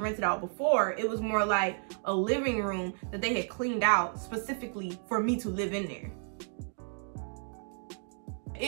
out before. It was more like a living room that they had cleaned out specifically for me to live in there.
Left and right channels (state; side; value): silent; left; digital silence